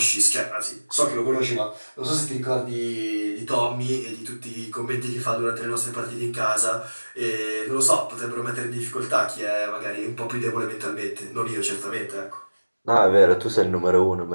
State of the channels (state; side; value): inverted; both; correlation -1.00